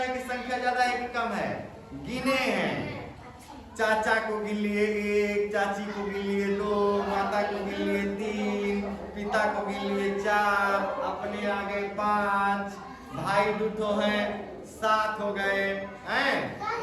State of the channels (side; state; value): both; identical; correlation 1.00